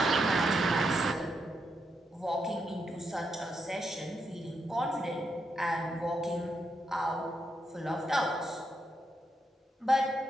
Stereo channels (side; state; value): both; normal; correlation 0.82